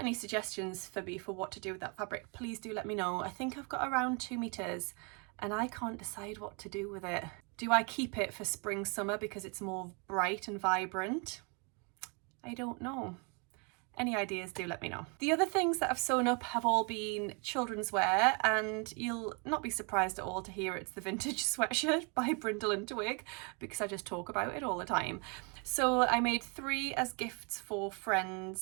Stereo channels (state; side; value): quieter; left; 34.2 dB